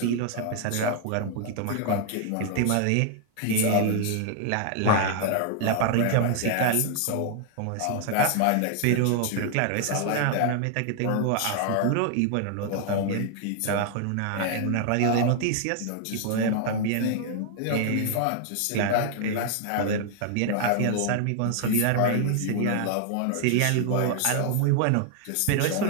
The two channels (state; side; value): different; both; correlation 0.00